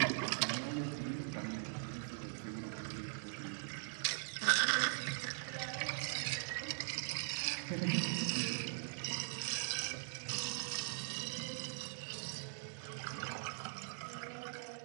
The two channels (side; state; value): left; silent; digital silence